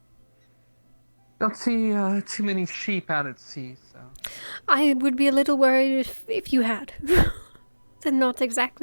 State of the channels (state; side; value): inverted; both; correlation -1.00